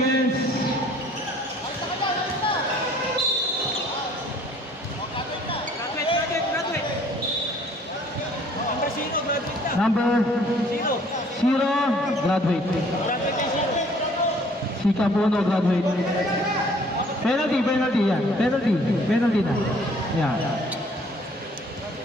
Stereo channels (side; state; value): both; normal; correlation 0.57